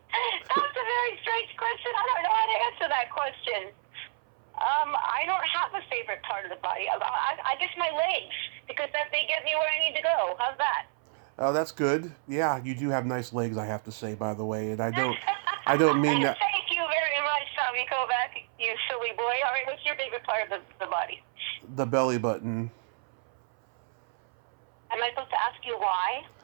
a very strange question. I don't know how to answer that question. I don't have a favorite part of the body. I guess my legs, because they get me where I need to go. How's that? Oh, that's good. Yeah, you do have nice legs, I have to say, by the way, and I don't mean that. Thank you very much, Tommy Kovac, you silly boy. All right, what's your favorite part of the body? The belly button. Am I supposed to ask you why?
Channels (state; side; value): silent; left; 58 dB below the other